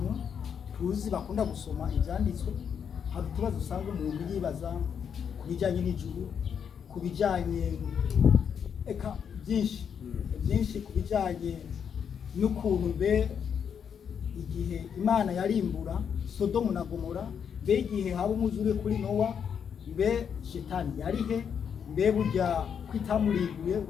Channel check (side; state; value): right; quieter; 7.5 dB